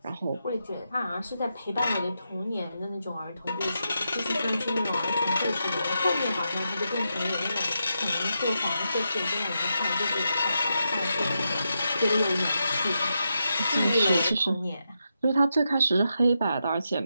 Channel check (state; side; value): inverted; both; correlation -0.85